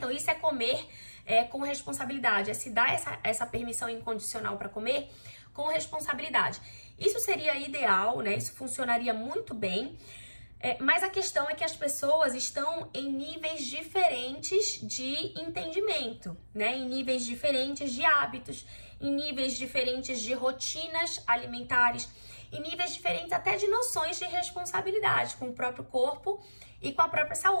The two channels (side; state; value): both; inverted; correlation -1.00